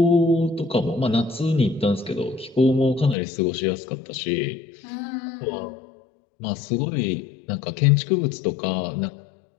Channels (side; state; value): right; drops out; at 3.2 s